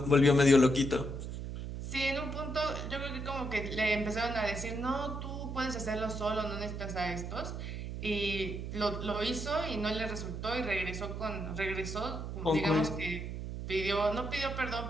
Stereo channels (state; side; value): noise; right; hum, 6 dB below the sound